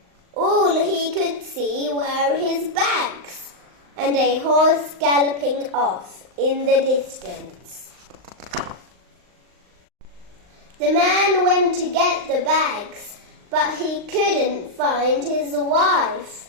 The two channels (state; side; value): late; left; 39 ms